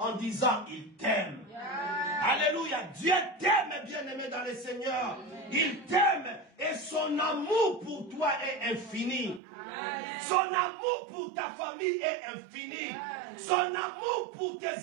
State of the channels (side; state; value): left; drops out; at 9.4 s